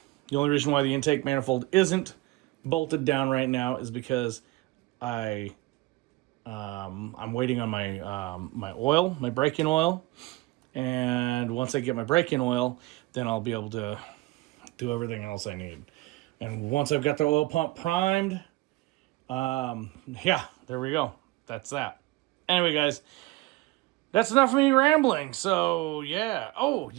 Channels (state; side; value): quieter; left; 19.9 dB